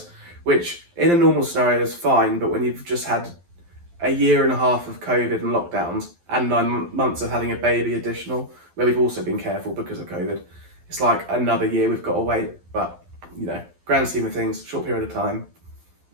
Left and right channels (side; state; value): left; late; 12 ms